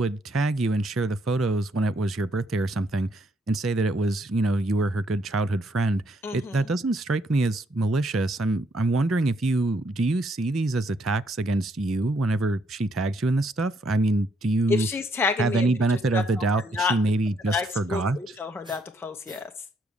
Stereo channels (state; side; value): normal; both; correlation 0.72